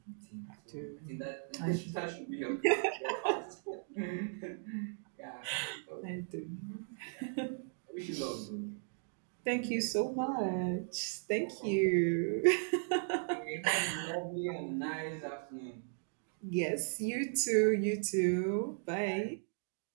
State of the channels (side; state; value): left; silent; digital silence